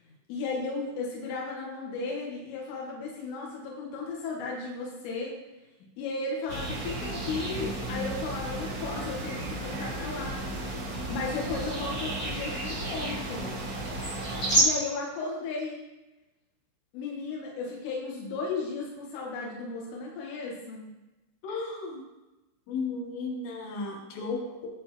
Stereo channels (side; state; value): right; late; 15 ms